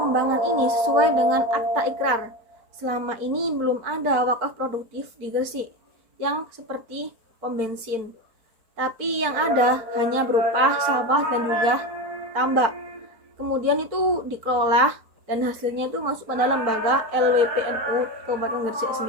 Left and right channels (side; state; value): left; late; 4.5 ms